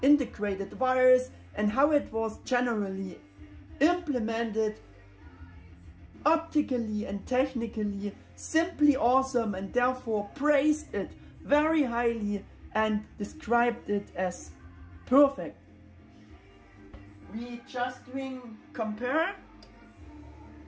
integrated wires and how it was generally implemented optically and technically, simply awesome, and therefore praised it very highly and described it as perfect. We just doing compare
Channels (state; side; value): identical; both; correlation 1.00